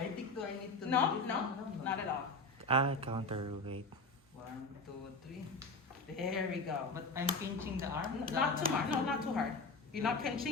think I need to No, do it. no, not at all. Counterweight. 1, 2, 3. There we go. But I'm pinching the arm. Not too hard, no, not too hard. You're not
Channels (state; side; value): quieter; right; 3.1 dB